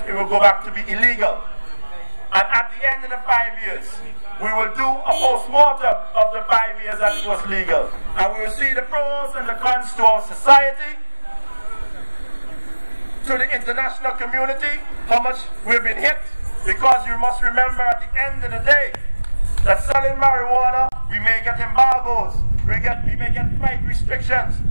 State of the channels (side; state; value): both; inverted; correlation -1.00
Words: it will go back to be illegal. And at the end of the 5 years, we will do a post-mortem of the 5 years that it was legal. And we will see the pros and the cons to our society, to the international community, how much we've been hit. Because you must remember at the end of the day, that selling marijuana, we may get embargoes, we may get flight restrictions,